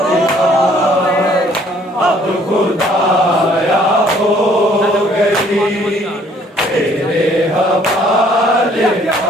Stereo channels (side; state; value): both; normal; correlation 0.61